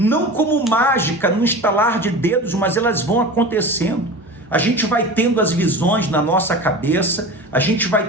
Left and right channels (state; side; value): normal; both; correlation 0.32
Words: como mágica, no estalar de dedos, mas elas vão acontecendo. A gente vai tendo as visões na nossa cabeça, a gente